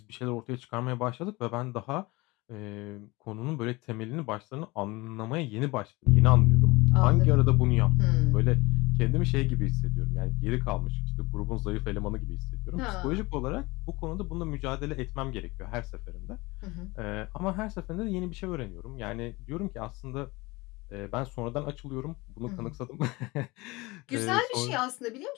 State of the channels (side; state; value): right; quieter; 23.1 dB